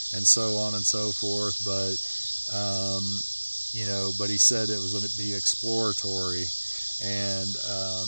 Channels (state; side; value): inverted; both; correlation -1.00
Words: and so on and so forth. But but he said it was going to be exploratory, and